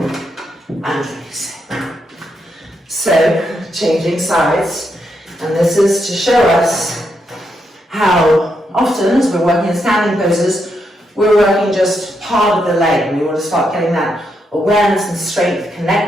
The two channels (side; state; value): both; normal; correlation 0.81